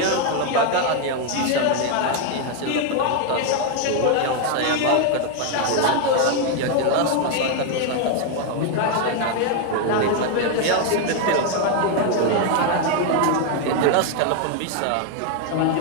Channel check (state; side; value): different; both; correlation 0.01